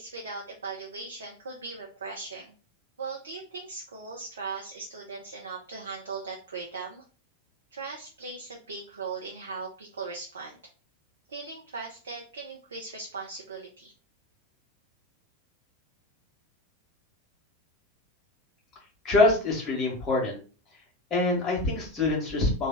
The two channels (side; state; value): both; normal; correlation 0.19